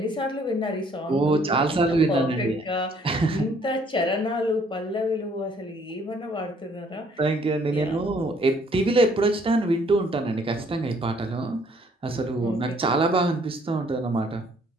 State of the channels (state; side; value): normal; both; correlation 0.62